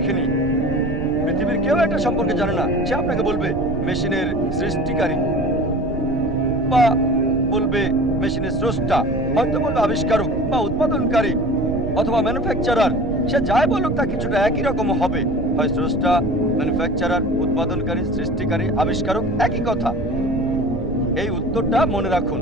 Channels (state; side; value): noise; right; rumble, 8 dB below the sound